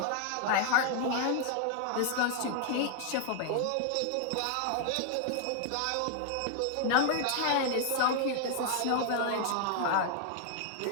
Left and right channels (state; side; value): different; both; correlation 0.00